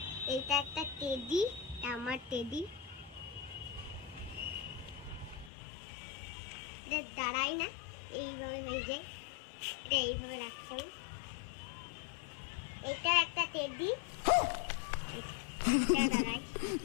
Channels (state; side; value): drops out; right; at 5.5 s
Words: এটা একটা টেডি, আমার টেডি। এটা দাঁড়াই না, এইভাবে হয়ে যায়। এটা এইভাবে রাখছি আমি। এটা একটা টেডি,